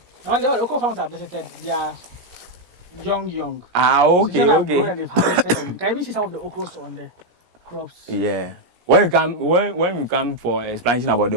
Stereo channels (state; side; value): late; left; 17 ms